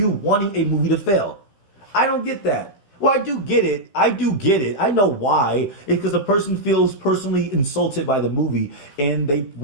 wanting a movie to fail. I don't get that. Well, I do get it. I know why. It's because the person feels personally insulted by the movie and they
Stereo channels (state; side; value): late; right; 15 ms